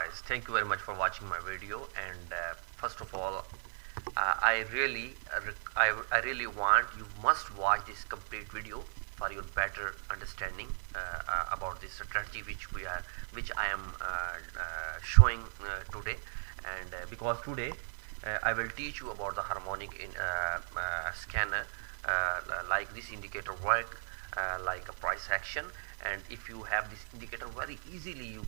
thank you very much for watching my video. And first of all, I really want you must watch this complete video for your better understanding about this strategy which I am showing today. And because today I will teach you about the harmonic scanner, like this indicator work, like a price action. And if you have this indicator, very easily you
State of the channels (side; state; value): left; silent; 54 dB below the other